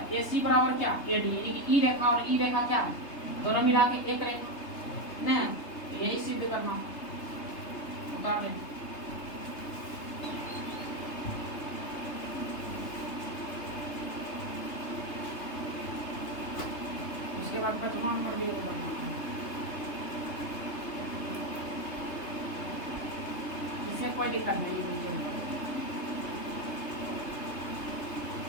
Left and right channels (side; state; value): right; late; 3.3 ms